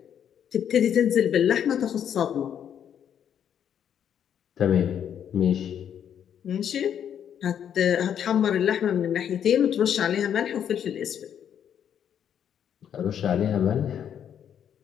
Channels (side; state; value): right; quieter; 9.0 dB